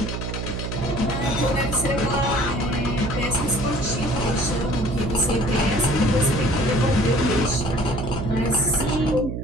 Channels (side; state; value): right; noise; hum, 5 dB below the sound